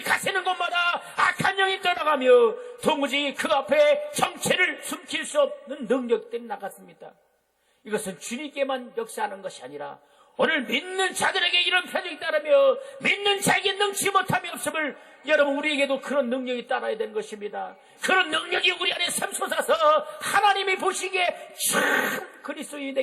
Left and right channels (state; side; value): identical; both; correlation 1.00